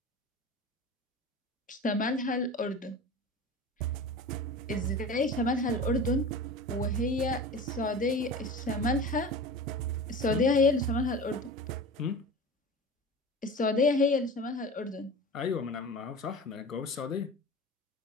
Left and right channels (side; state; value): both; normal; correlation 0.34